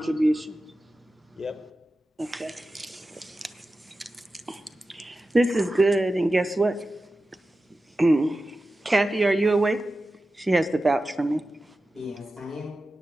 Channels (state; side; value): normal; both; correlation 0.94